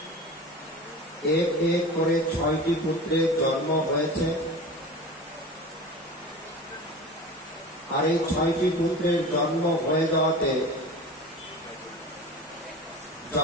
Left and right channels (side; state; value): both; normal; correlation 0.34